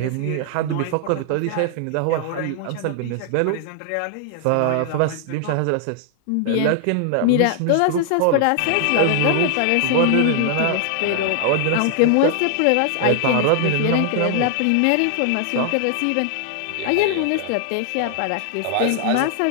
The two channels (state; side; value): different; both; correlation 0.00